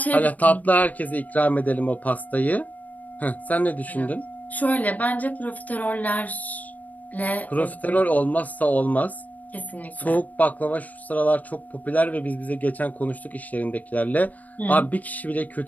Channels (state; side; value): late; right; 0.076 ms